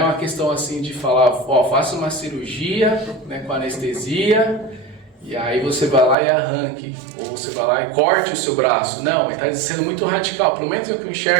questão assim de falar, faça uma cirurgia, né, com anestesia, e aí você vai lá e arranque, ou você vai lá e corte o seu braço. Não, ele está sendo muito radical, pelo menos o que eu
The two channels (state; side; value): drops out; left; at 6.2 s